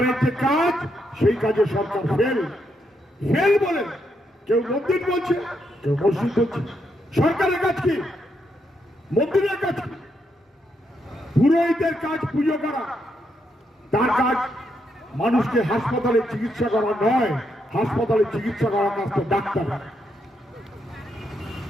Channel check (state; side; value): normal; both; correlation 0.79